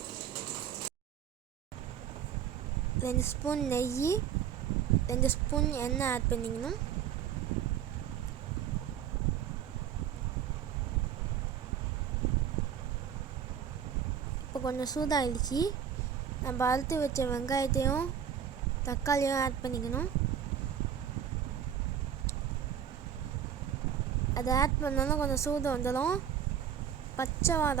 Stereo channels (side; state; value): left; quieter; 8.8 dB